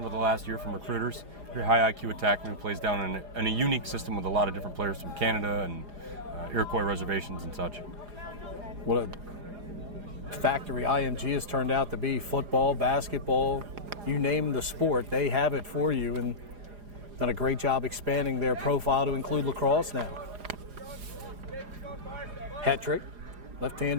over the last year from recruiters. Very high IQ attackman who plays down in a unique system with a lot of different players from Canada and Iroquois reservations and such. What a factory IMG has turned out to be. Football, basketball, you name the sport, they have it for you, and done a great job expanding their profile to include lacrosse now. Hat trick,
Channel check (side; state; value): left; late; 4.9 ms